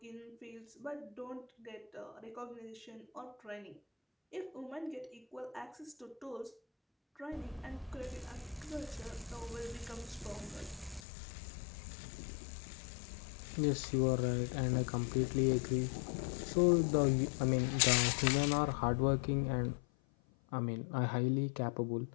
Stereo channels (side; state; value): right; drops out; at 11.0 s